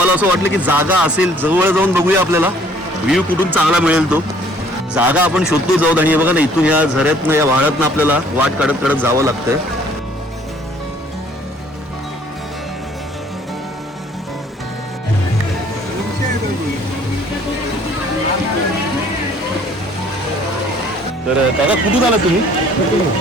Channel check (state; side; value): normal; both; correlation 0.58